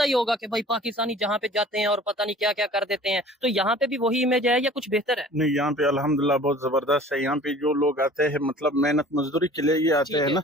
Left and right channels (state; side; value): normal; both; correlation 0.47